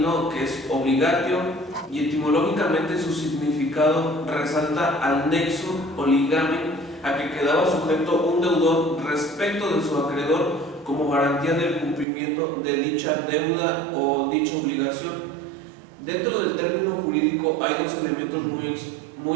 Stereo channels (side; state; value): left; drops out; at 12.1 s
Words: que es obligatio y etimológicamente su significado resalta al nexo o ligamen a que quedaba sujeto un deudor respecto de su acreedor como garantía del cumplimiento de dicha deuda o dicha obligación. Dentro del término jurídico hay dos elementos